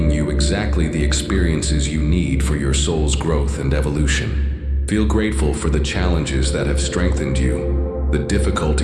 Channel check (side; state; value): both; identical; correlation 1.00